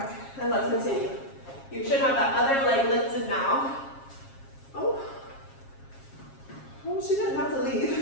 and let's continue. You should have that other leg lifted now. Oh, she didn't have to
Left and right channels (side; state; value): right; late; 7.4 ms